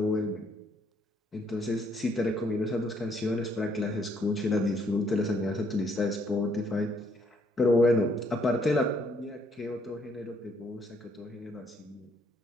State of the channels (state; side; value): normal; both; correlation 0.68